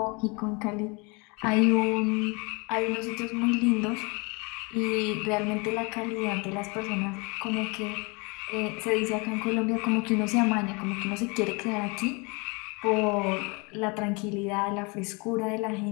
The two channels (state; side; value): quieter; right; 29.4 dB